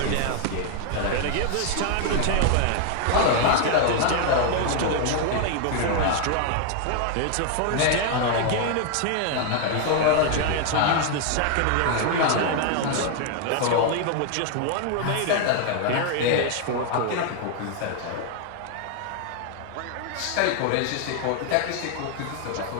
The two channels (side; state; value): both; different; correlation 0.00